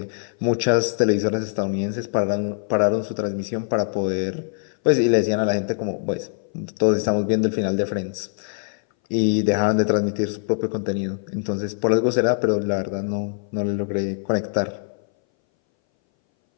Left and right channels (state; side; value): silent; right; 61 dB below the other